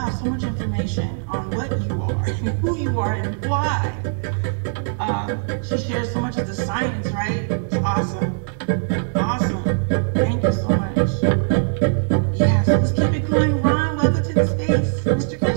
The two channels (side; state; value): left; silent; digital silence